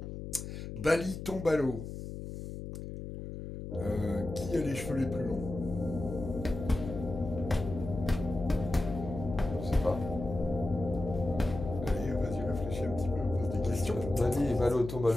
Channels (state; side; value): noise; left; hum, 8 dB below the sound